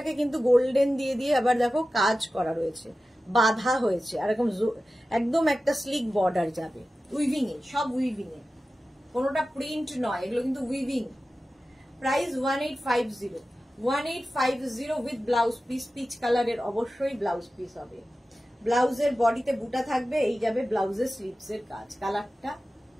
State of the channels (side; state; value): both; normal; correlation 0.94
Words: কিন্তু গোল্ডেন দিয়ে দিয়ে আবার দেখো কাজ করা রয়েছে, বাঁধা হয়েছে, আর এরকম একদম একটা স্লিক বর্ডার যাবে, উইভিং এ, সব উইভিং এ, কোনোটা প্রিন্ট নয়, এগুলো কিন্তু weaving. Price 1850, 1850 with blouse piece, peach কালারের অবশ্যই ব্লাউজ পিস হবে। ব্লাউজের বডিতে বুটা থাকবে, এই যাবে ব্লাউজের স্লিভস এর কাজ। কালারটা